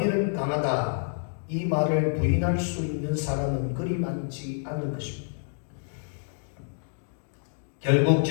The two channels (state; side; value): silent; right; digital silence